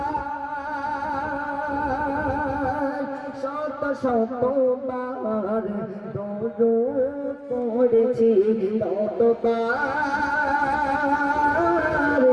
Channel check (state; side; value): identical; both; correlation 1.00